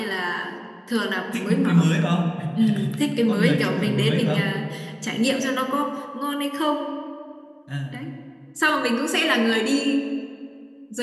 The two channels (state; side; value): identical; both; correlation 1.00